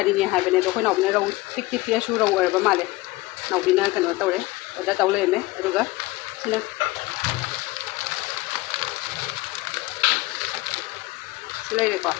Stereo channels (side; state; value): right; quieter; 20.5 dB